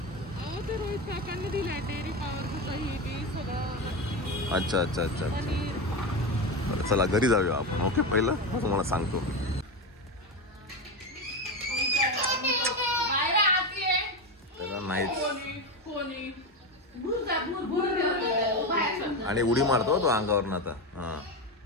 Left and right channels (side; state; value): both; normal; correlation 0.16